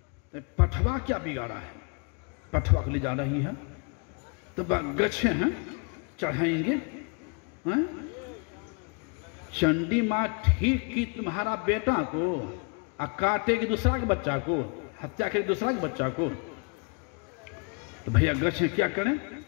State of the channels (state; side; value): quieter; right; 36.8 dB